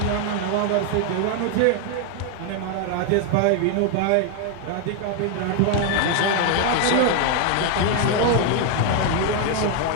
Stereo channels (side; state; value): both; different; correlation 0.00